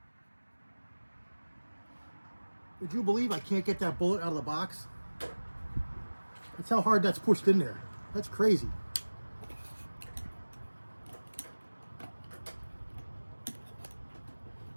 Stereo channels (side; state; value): both; inverted; correlation -1.00